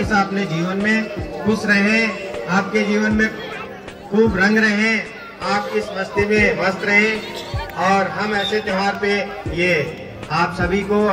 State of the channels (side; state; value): both; identical; correlation 1.00